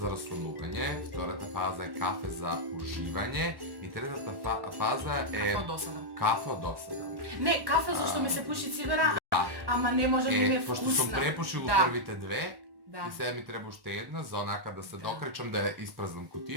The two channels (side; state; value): left; late; 1.1 ms